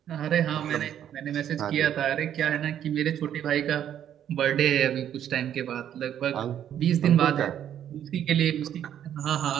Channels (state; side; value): quieter; left; 10.1 dB